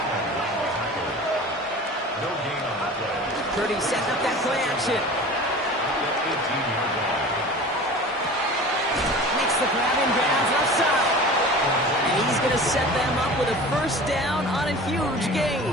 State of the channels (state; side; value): normal; both; correlation 0.38